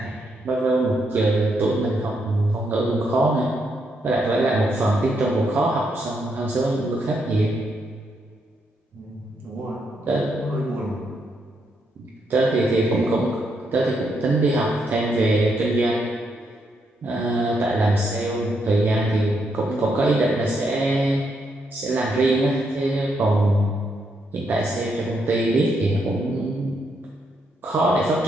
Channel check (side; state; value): both; normal; correlation 0.78